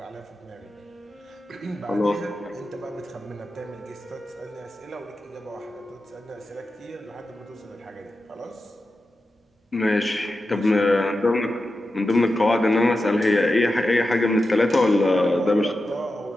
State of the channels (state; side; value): normal; both; correlation 0.91